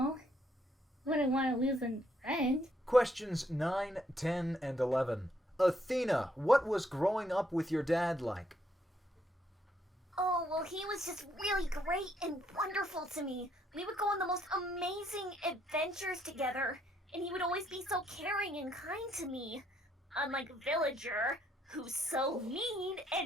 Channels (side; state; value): both; normal; correlation 0.71